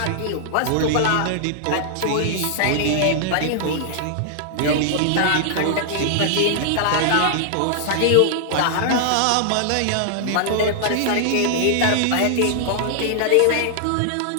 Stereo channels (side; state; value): both; different; correlation -0.01